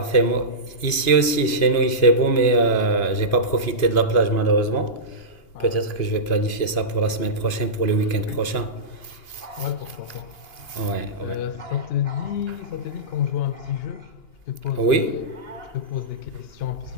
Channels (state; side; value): late; right; 2.8 ms